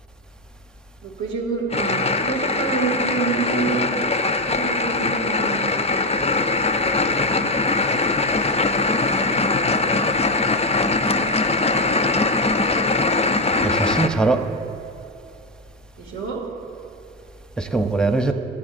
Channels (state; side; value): normal; both; correlation 0.08